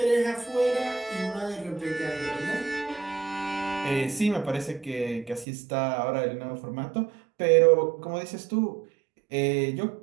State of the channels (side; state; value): left; drops out; at 5.5 s